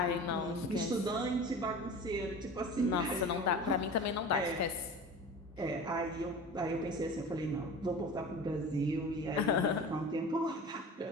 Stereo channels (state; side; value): normal; both; correlation 0.36